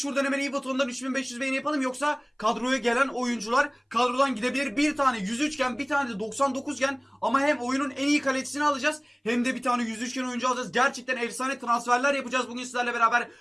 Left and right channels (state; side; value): identical; both; correlation 1.00